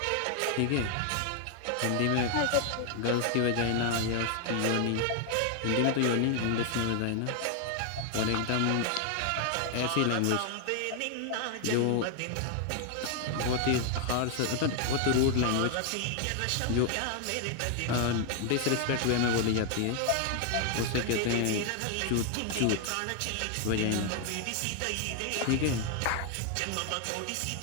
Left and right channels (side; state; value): both; different; correlation 0.00